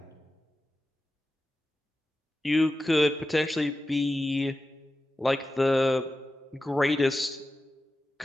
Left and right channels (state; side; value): normal; both; correlation 0.93